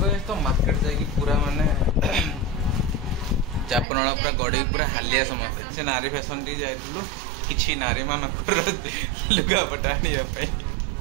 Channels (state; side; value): drops out; left; at 3.9 s